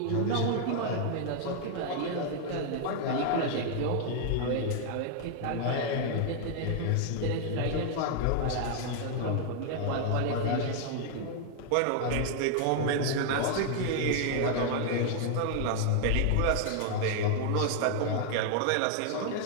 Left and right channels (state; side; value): different; both; correlation 0.00